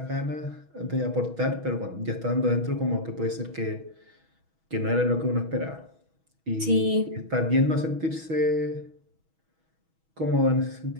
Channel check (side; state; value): left; late; 6.2 ms